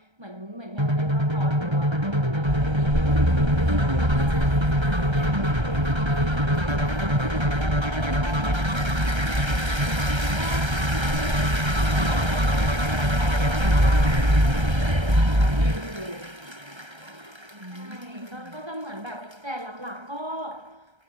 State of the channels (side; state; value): left; late; 1.3 ms